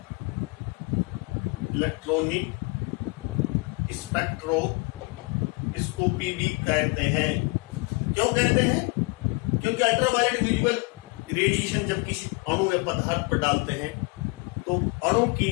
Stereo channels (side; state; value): right; quieter; 28.4 dB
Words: इलेक्ट्रॉनिक स्पेक्ट्रोस्कोपी भी कहते हैं। क्यों कहते हैं? क्योंकि अल्ट्रावायलेट विजिबल रेडिएशन जब किसी अणु या पदार्थ पर डालते हैं तो अणु की